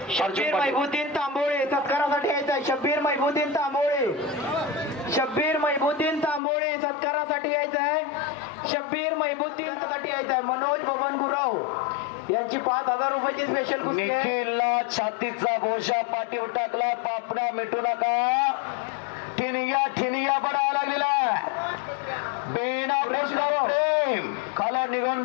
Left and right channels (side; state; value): right; drops out; at 6.4 s